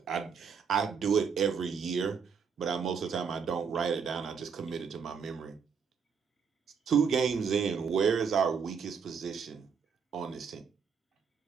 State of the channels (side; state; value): left; quieter; 6.3 dB